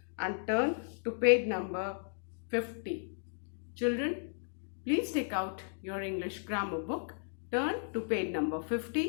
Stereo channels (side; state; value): right; silent; digital silence